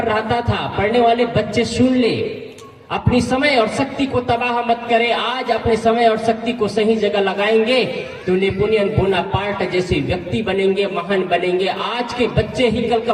रहता था। पढ़ने वाले बच्चे सुन ले, अपनी समय और शक्ति को तबाह मत करें। आज अपने समय और शक्ति को सही जगह लगाएंगे तो नेपोलियन बोनापार्ट जैसे व्यक्ति बनेंगे, महान बनेंगे। आज के बच्चे ही कल का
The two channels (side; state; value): both; identical; correlation 1.00